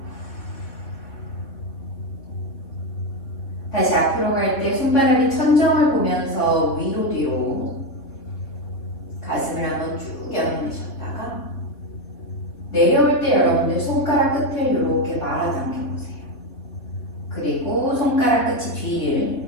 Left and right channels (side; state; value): right; late; 3.5 ms